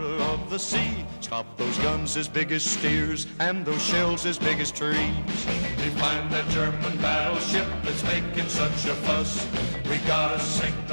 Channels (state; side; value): inverted; both; correlation -1.00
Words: of the sea. Stop those guns as big as steers and those shells as big as trees. We find that German battleship that's making such a fuss. We gotta sink